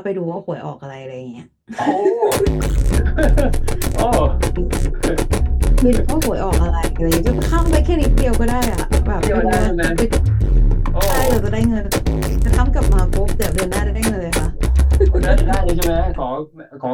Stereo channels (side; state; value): both; identical; correlation 1.00